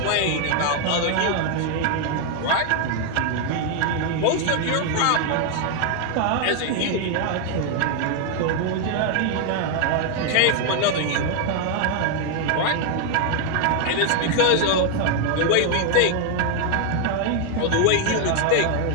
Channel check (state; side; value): different; both; correlation 0.00